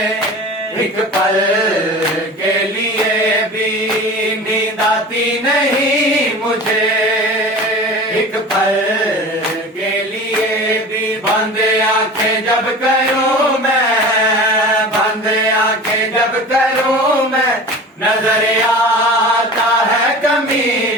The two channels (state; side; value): normal; both; correlation 0.36